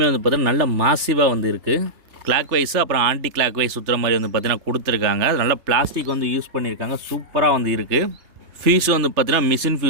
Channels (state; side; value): late; left; 3.3 ms